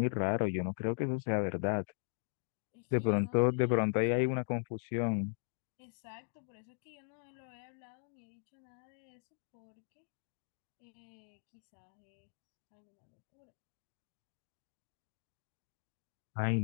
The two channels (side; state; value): right; silent; digital silence